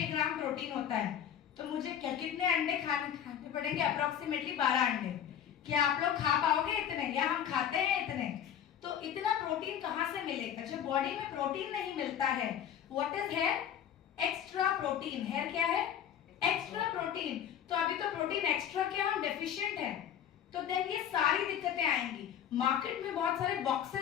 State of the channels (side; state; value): right; quieter; 9.4 dB